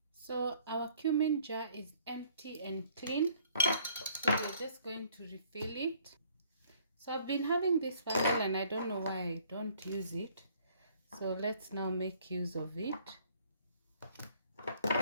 So our cumin jar is empty and clean. So we're just going to refill it. So I've been having this bottle and I don't know why I don't use it. So let's now make use of it.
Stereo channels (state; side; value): inverted; both; correlation -0.60